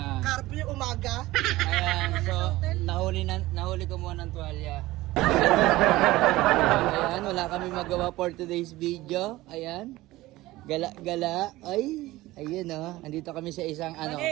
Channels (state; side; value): quieter; left; 18.0 dB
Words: Curfew umaga. Ayan, so nahuli ko muna ng tuwalya. Ayan, wala kami magawa for today's video. Ayan. Gala. Ay, ayun andito kami sa isang